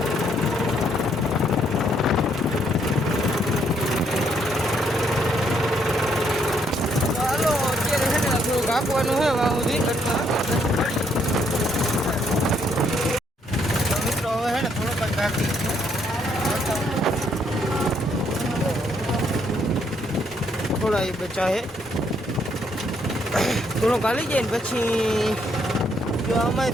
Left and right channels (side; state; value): both; normal; correlation 0.71